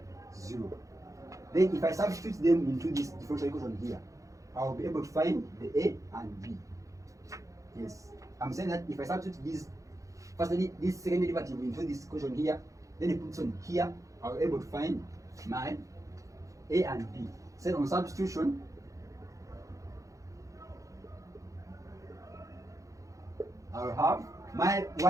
0. Then if I substitute them into this differential equation here, I will be able to find the a and b. Yes, I'm saying that if I substitute this second derivative into this equation here, then it puts on here, I'll be able to find my a and b. So on substitution, I'll have my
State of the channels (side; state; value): left; late; 0.16 ms